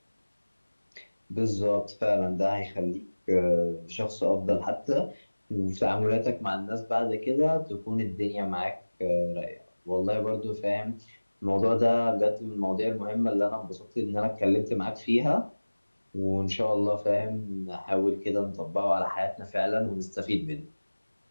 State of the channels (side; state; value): both; inverted; correlation -1.00